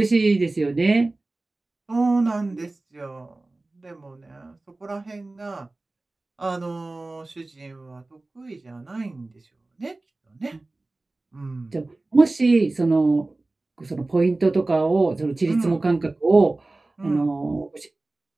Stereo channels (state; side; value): quieter; left; 3.0 dB